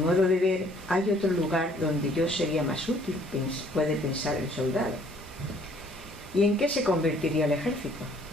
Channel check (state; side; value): normal; both; correlation 0.60